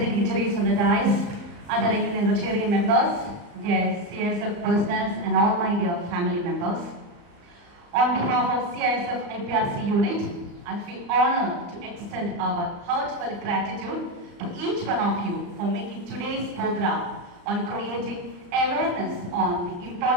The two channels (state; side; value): late; left; 34 ms